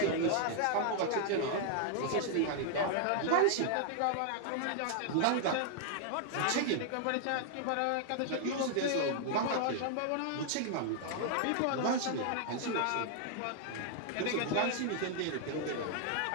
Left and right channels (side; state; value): both; different; correlation -0.01